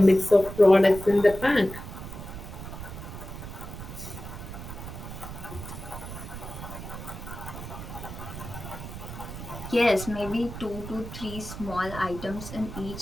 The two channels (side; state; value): right; noise; rumble, 10 dB below the sound